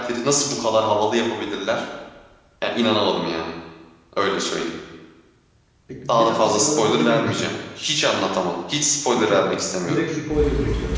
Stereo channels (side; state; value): both; identical; correlation 1.00